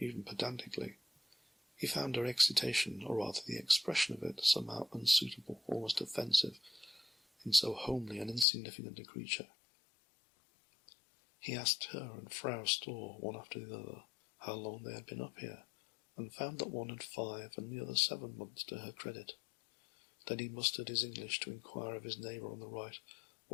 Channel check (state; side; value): drops out; right; at 8.5 s